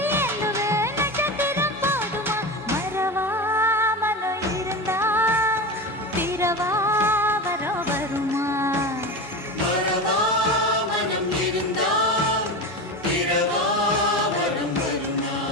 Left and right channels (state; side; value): normal; both; correlation 0.24